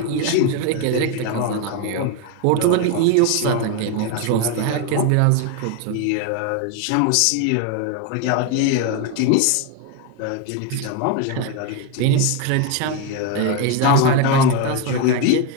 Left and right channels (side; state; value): both; different; correlation 0.02